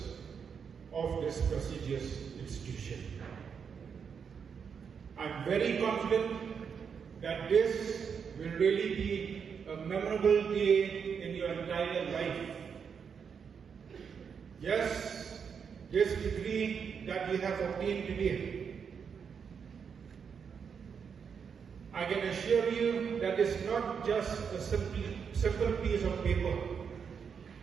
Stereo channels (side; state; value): left; quieter; 6.6 dB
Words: of this prestigious institution. I'm very confident that this will really be a memorable day in your entire life. Yes, this degree that we have obtained today, I can assure you that it's not just a simple piece of paper,